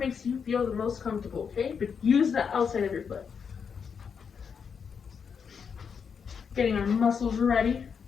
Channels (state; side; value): quieter; right; 6.5 dB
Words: you feel the most comfortable, okay? But use the outside of your foot. Getting our muscles ready.